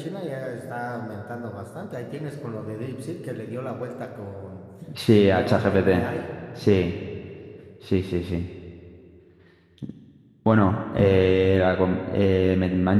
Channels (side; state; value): both; identical; correlation 1.00